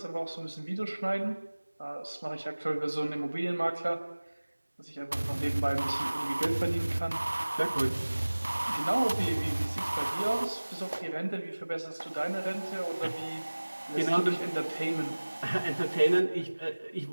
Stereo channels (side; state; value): both; inverted; correlation -1.00